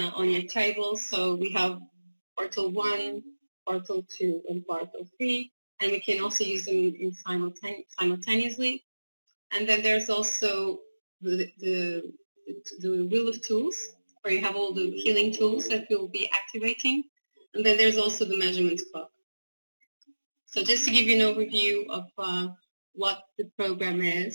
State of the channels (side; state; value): both; inverted; correlation -1.00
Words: on your table. So we have portal 1, portal 2, and portal 3, and we can also use them in simultaneously. And then there's also the wheel of tools, where you have all the healing tools that we'll be activating. And then there's also the measurements clock. So just to give you an overview of what the program